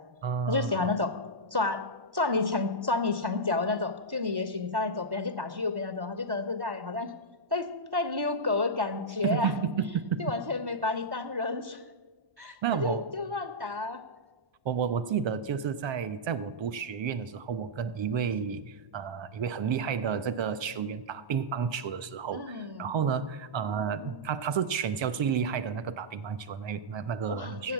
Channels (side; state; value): left; late; 1.3 ms